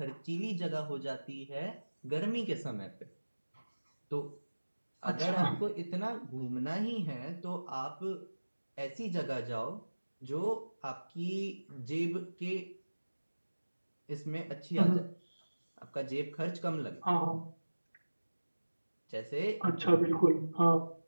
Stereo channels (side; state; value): both; inverted; correlation -1.00